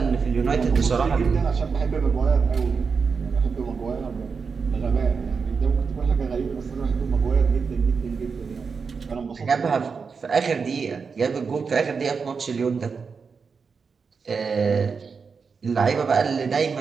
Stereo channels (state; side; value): quieter; left; 5.4 dB